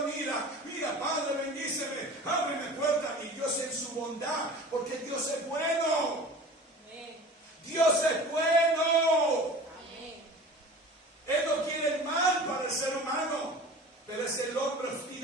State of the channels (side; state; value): both; normal; correlation 0.40